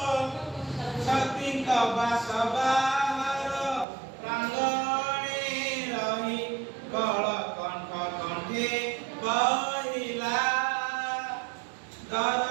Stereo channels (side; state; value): left; drops out; at 3.9 s